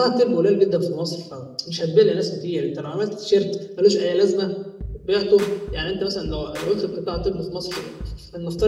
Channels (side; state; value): both; identical; correlation 1.00